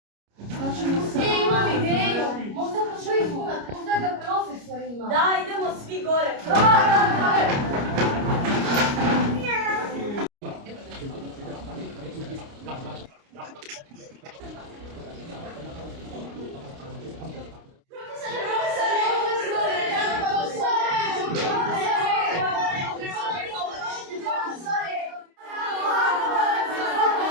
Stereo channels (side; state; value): left; late; 29 ms